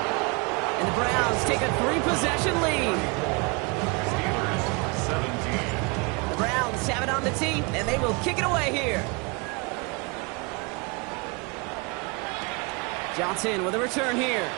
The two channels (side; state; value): left; quieter; 30.1 dB